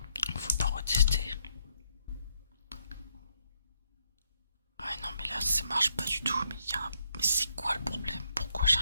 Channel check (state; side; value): inverted; both; correlation -0.75